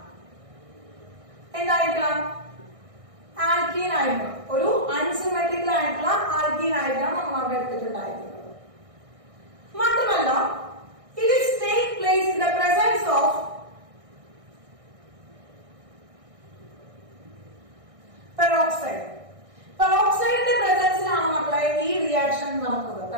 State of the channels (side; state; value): left; late; 1.6 ms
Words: എന്തായിരിക്കണം ആൽക്കീൻ ആയിരിക്കണം. ഒരു അൺസിമെട്രിക്കൽ ആയിട്ടുള്ള ആൽക്കീൻ ആയിരിക്കണം നമ്മൾ അവിടെ എടുത്തിട്ടുണ്ടായിരിക്കുന്നത്. മാത്രമല്ല it is take place in the presence of peroxide. പെറോക്സൈഡിന്റെ പ്രസൻസിലാണ് മക്കളെ ഈ റിയാക്ഷൻ നടക്കുന്നത്.